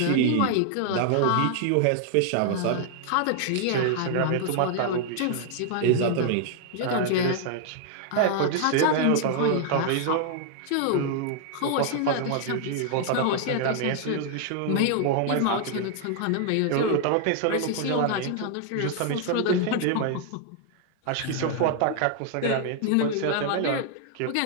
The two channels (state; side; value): different; both; correlation 0.00